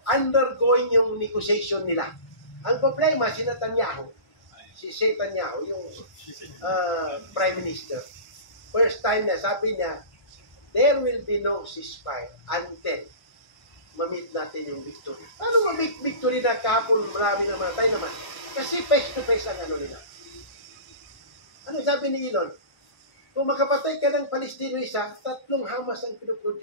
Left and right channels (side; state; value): right; late; 1.1 ms